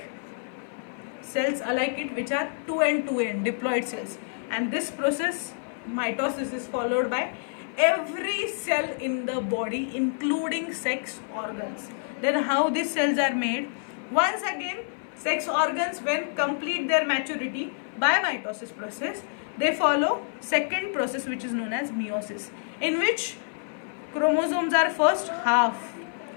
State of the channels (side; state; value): right; silent; 56 dB below the other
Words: cells alike it, which are 2n diploid cells. And this process, mitosis, is followed by every cell in the body, including sex organs. Then how these cells are made? Once again, sex organs, when complete their maturity by mitosis process, they follow second process, which is known as meiosis, in which chromosomes are first